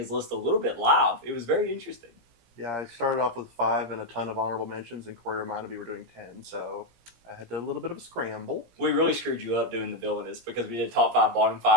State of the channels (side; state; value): left; late; 17 ms